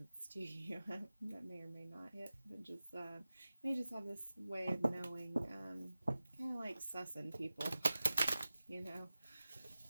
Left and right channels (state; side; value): inverted; both; correlation -0.96